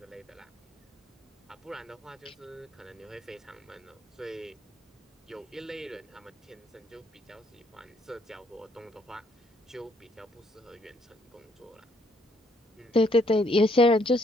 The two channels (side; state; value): both; normal; correlation 0.69